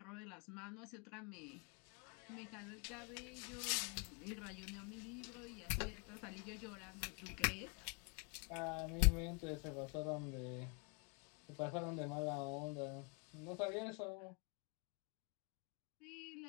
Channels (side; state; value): right; quieter; 34.1 dB